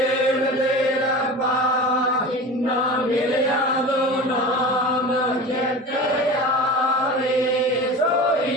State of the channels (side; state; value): both; normal; correlation 0.33